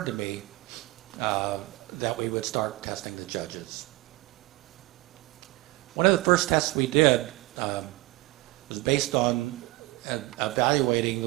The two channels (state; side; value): quieter; left; 20.4 dB